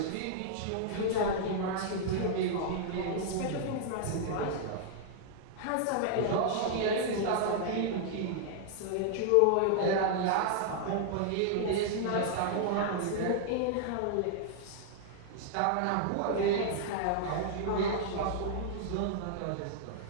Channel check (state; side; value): different; both; correlation -0.01